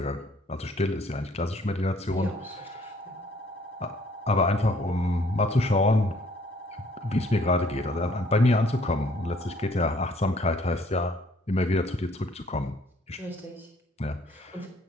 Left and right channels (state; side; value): normal; both; correlation 0.61